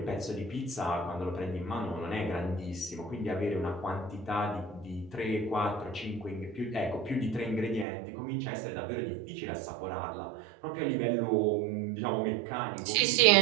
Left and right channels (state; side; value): drops out; left; at 7.9 s